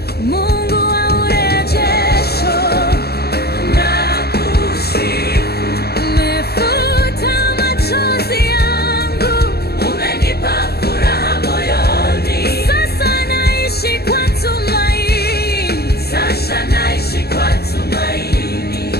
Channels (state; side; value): late; right; 0.46 ms